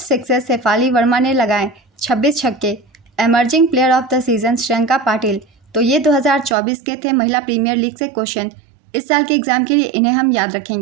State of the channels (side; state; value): left; drops out; at 6.6 s